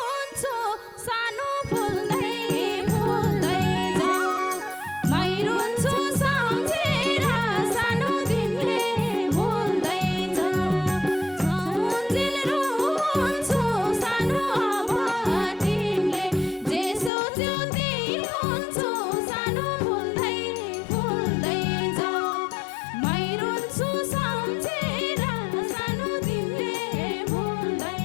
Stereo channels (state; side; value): drops out; right; at 17.1 s